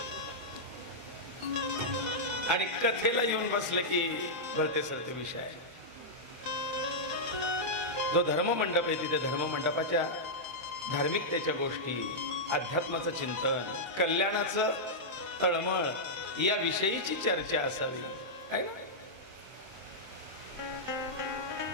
आणि कथेला येऊन बसले की भलते सरते विषय. जो धर्ममंडप आहे तिथे धर्ममंडपाच्या धार्मिकतेच्या गोष्टी, अध्यात्माचं चिंतन, कल्याणाचं तळमळ या विषयीची चर्चा असावी, आहे ना?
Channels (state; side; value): late; left; 23 ms